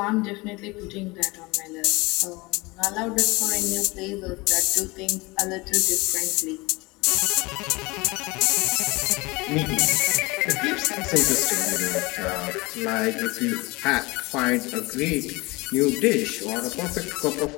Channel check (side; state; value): right; quieter; 23.7 dB